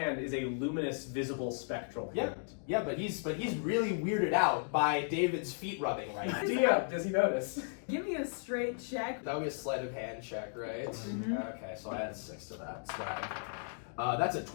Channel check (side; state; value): right; silent; digital silence